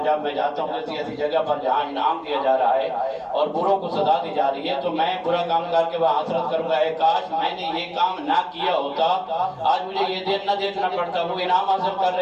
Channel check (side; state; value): both; identical; correlation 1.00